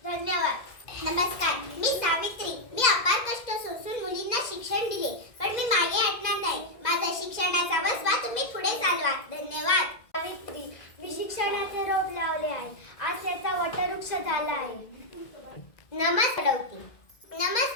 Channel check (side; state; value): right; late; 2.0 ms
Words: धन्यवाद. नमस्कार, मी सावित्री. मी अपार कष्ट सोसून मुलींना शिक्षण दिले, पण मी मागे हटणार नाही. माझा शिक्षणाचा वसवा तुम्ही पुढे चालवा. धन्यवाद. सावित्री, मी शिक्षणाचे रोप लावले आहे. आज त्याचा वटवृक्ष झाला आहे.